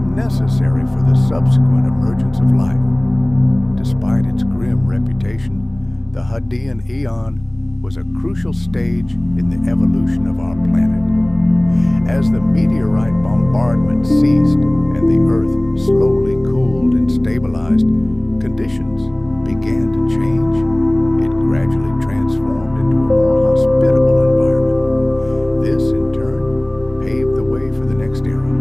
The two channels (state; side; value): noise; left; rumble, 27 dB below the sound